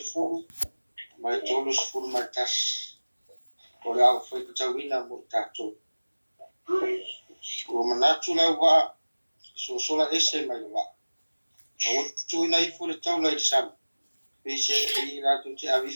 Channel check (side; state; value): both; inverted; correlation -1.00